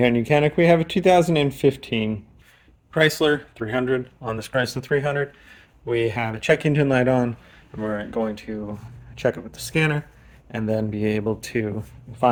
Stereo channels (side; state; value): both; identical; correlation 1.00